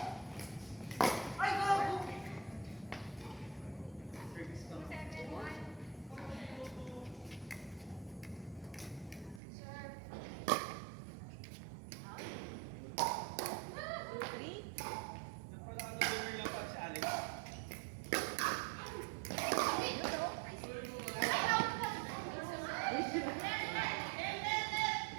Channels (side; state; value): left; drops out; at 9.4 s